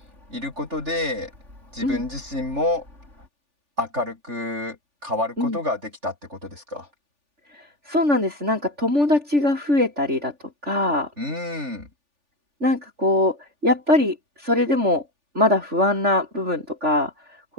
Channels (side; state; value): left; late; 3.4 ms